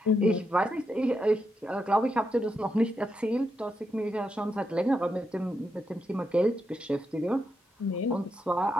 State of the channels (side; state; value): both; normal; correlation 0.83